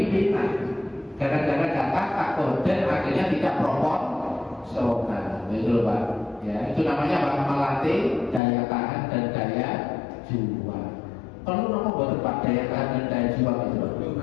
pimpinan. Gara-gara kata koden akhirnya tidak proporsional, gitu Pak. Ya, itu namanya Pak, melatih daya tahan dan daya juang. Perlu nomor buat Pak daya tahan dan daya juang itu Pak.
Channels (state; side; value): drops out; right; at 8.4 s